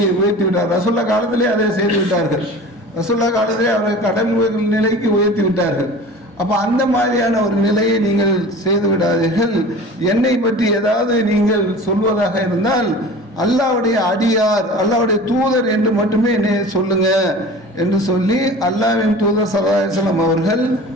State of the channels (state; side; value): normal; both; correlation 0.39